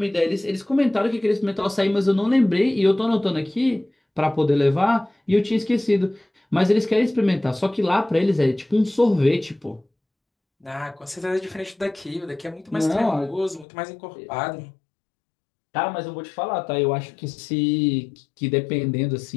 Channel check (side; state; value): right; drops out; at 13.7 s